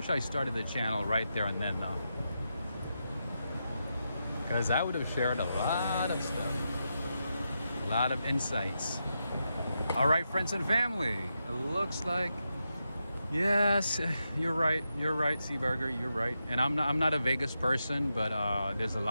I started the channel right there and then though, because I would have shared a lot of stuff, a lot of insights. All right, friends and family, it looks like, yes, you're right, Seaburger, you're right. And I'm not a Vegas person, but there's a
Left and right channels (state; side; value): inverted; both; correlation -0.86